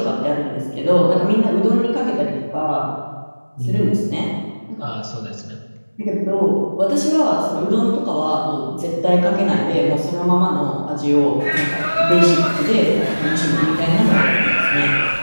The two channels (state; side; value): inverted; both; correlation -1.00